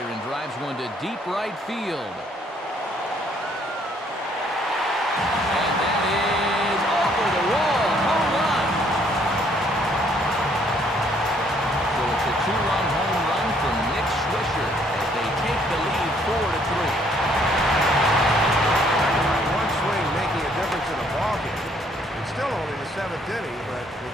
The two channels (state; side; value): normal; both; correlation 0.65